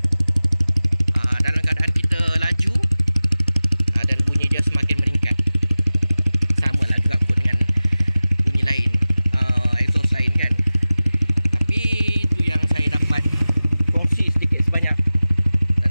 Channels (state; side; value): inverted; both; correlation -0.96